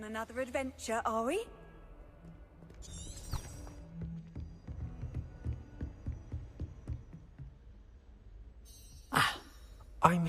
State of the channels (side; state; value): both; identical; correlation 1.00